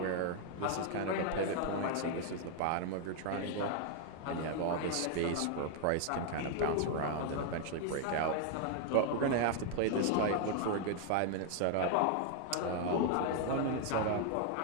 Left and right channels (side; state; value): both; different; correlation 0.00